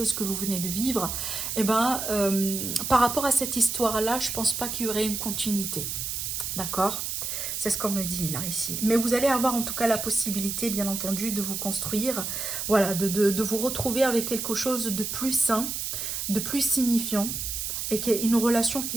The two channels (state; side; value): noise; right; hiss, 3 dB below the sound